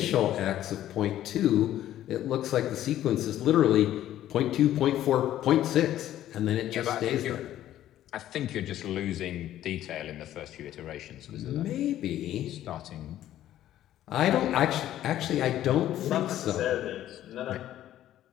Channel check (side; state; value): right; quieter; 12.6 dB